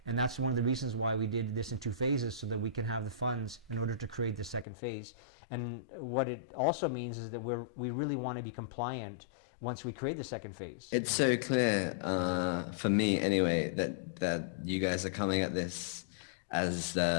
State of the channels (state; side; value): drops out; right; at 4.7 s